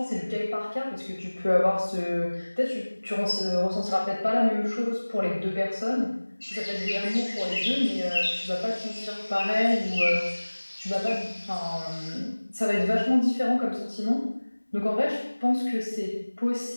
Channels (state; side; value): inverted; both; correlation -1.00